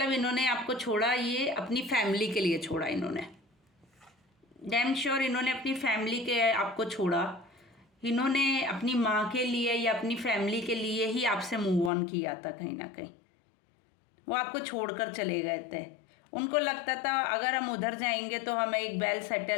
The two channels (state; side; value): drops out; right; at 11.9 s